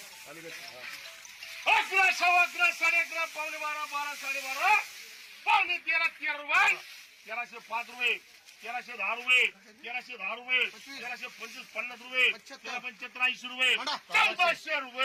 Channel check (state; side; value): identical; both; correlation 1.00